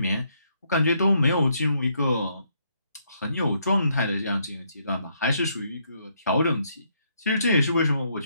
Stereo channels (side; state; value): both; inverted; correlation -0.73